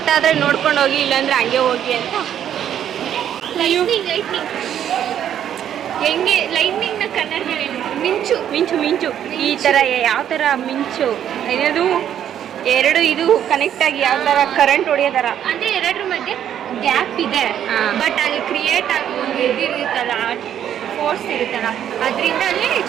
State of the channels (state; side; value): quieter; left; 10.0 dB